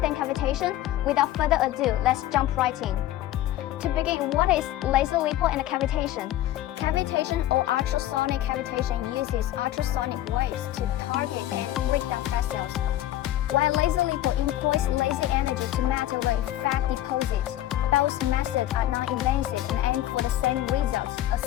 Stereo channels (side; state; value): right; quieter; 13.7 dB